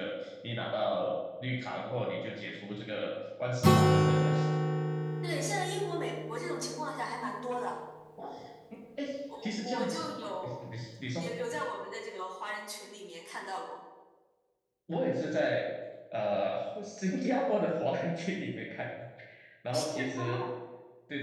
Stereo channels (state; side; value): identical; both; correlation 1.00